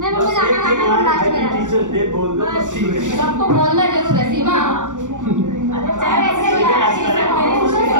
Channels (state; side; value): late; left; 0.87 ms